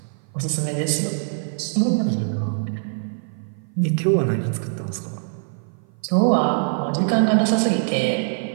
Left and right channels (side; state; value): left; silent; 55 dB below the other